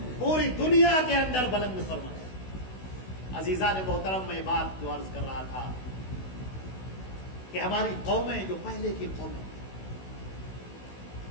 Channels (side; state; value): right; late; 16 ms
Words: پوری دنیا کے اندر بلند فرمایا۔ عزیزان محترم، میں بات جو عرض کر رہا تھا کہ ہماری قومیں جو پہلے کی قومیں،